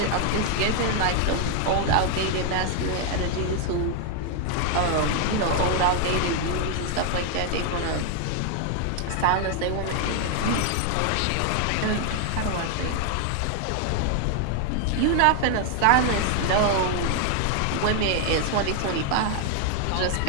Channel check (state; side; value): different; both; correlation 0.00